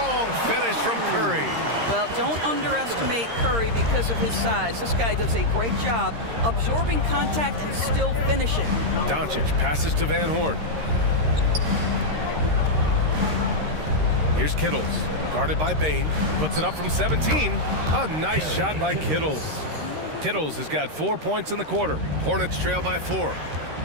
finish from Curry. Well, don't underestimate Curry because of his size. This guy does a great job absorbing contact and still finishing. Doncic passes to Van Horn. Here's Kittles, guarded by Bane. Puts it up from 17. A nice shot by Kittles. Kittles has got 4 points in the quarter. Hornets trail by 4.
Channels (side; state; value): left; late; 13 ms